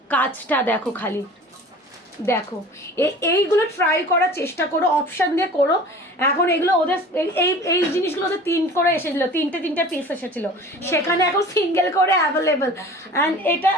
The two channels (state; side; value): normal; both; correlation 0.42